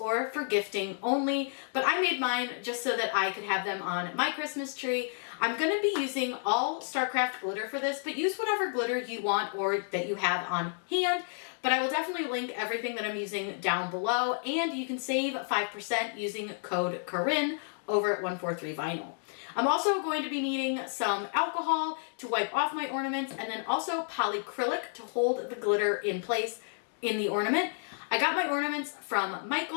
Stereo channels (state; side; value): silent; right; 57 dB below the other